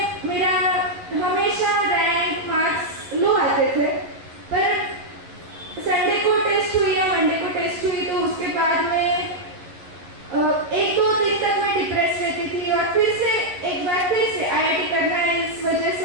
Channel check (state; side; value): late; left; 11 ms